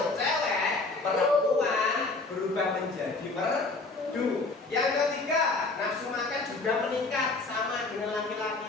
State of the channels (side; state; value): right; quieter; 3.5 dB